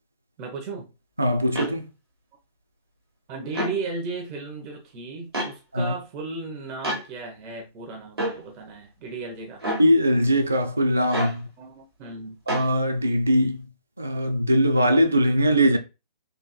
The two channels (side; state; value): both; inverted; correlation -0.76